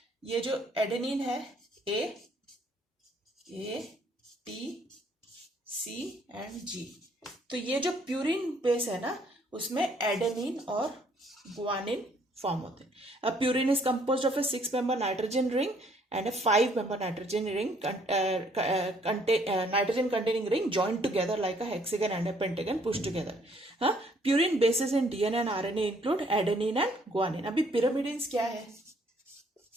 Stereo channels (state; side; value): normal; both; correlation 0.64